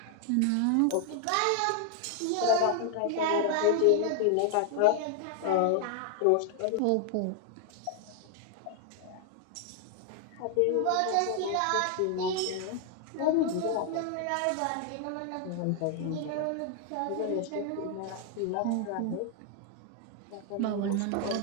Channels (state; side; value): different; both; correlation 0.00